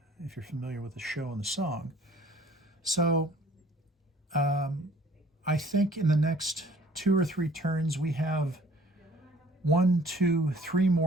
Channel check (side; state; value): both; normal; correlation 0.54